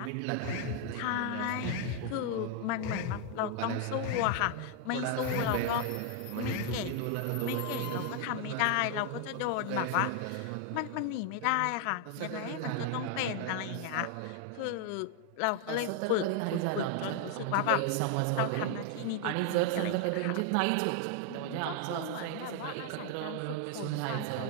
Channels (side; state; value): both; different; correlation 0.00